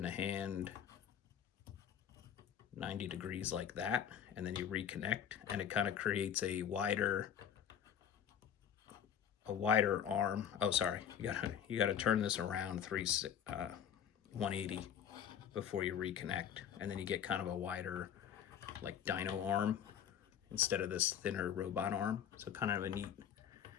the hand 90 degrees like that, and then you reconnect, and it kind of creates a wider arm. Oh, sorry, you gotta turn this around 180 before you reconnect, and then you get kind of a wider, like, dino arm instead of this thinner robot arm. So kind of a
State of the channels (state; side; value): quieter; right; 8.9 dB